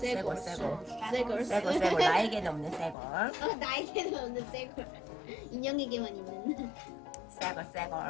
나에게는 없는 쇠골. 나에게는 없는 쇠골. 인형에게만 있는.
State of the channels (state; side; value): drops out; right; at 3.0 s